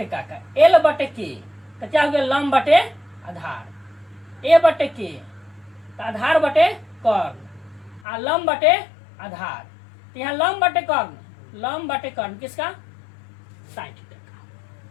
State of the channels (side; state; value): right; drops out; at 8.0 s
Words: का, एल बटे के, तो क्या हो गया, लंब बटे आधार, ए बटे के तो आधार बटे कर्ण, आ लंब बटे आधार। तो यहाँ लंब बटे कर्ण, लंब बटे कर्ण किसका, साइन थीटा का।